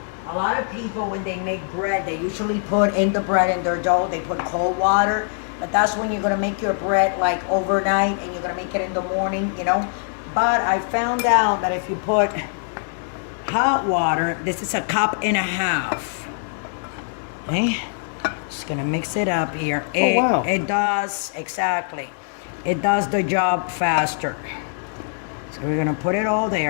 a lot of people, when they make bread, they usually put in the bread in their dough, they put cold water. But that's when you're going to make your bread like overnight and you're going to make it in the morning, you know. But I found out that if you put hot water, this is 1.5 cups. Okay. Just going to mix it up here. Wow. It does, exactly. It does the job faster. So we're going to put it all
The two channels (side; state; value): right; silent; 64 dB below the other